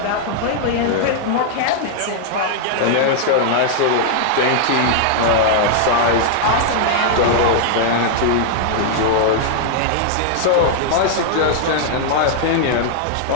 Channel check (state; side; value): different; both; correlation -0.01